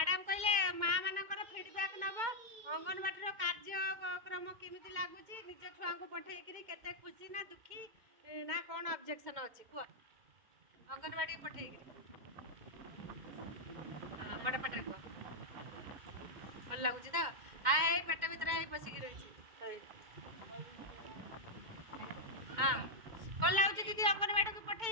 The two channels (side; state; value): left; late; 2.1 ms